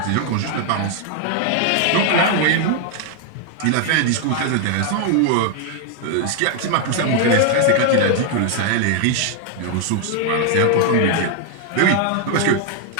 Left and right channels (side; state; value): both; different; correlation 0.00